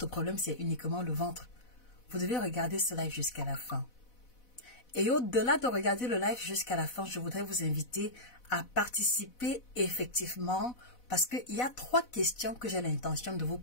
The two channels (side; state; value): right; late; 4.1 ms